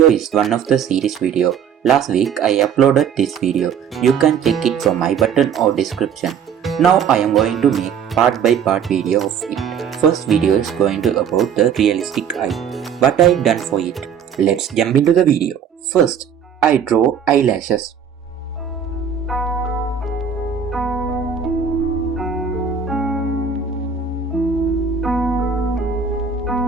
is one of the series video. Last week I uploaded this video. You can check it from my button or description. Now I am going to make part by part video of it. First video is going to about the realistic eye. What I done for it. Let's jump into the video. First, I draw eyelashes.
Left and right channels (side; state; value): left; quieter; 7.5 dB